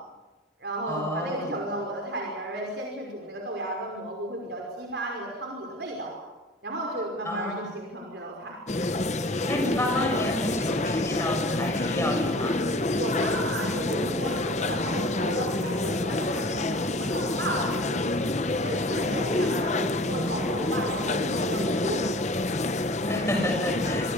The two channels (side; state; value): both; normal; correlation 0.43